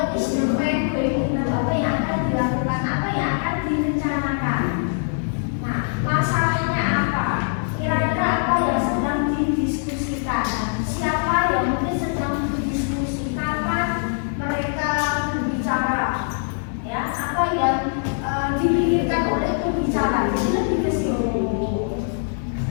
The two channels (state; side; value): silent; right; 55 dB below the other